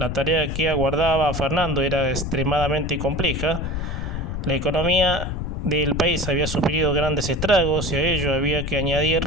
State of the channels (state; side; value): noise; left; rumble, 4 dB below the sound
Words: tarea que aguardaba a Fernando era extremadamente compleja. La economía del país había sufrido grandes estragos y a ello había que